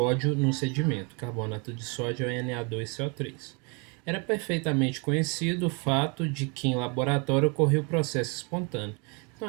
no sedimento. Carbonato de sódio é Na2CO3. Era perfeitamente conhecido o fato de que em laboratório ocorria o processo espontâneo.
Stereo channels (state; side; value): quieter; left; 33.1 dB